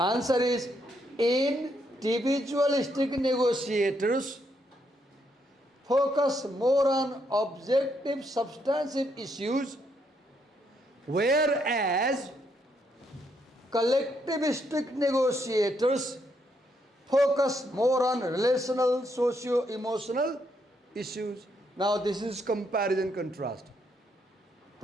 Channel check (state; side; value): normal; both; correlation 0.75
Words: is, individualistic negotiators focus more on objective, substantive issues, whereas collectivistic negotiators focus more on relational, socio-emotional issues. Now this is comparison contrast.